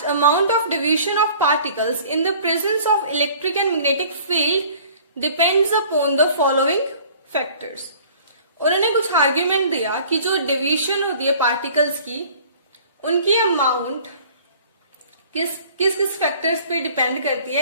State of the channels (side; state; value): both; inverted; correlation -0.50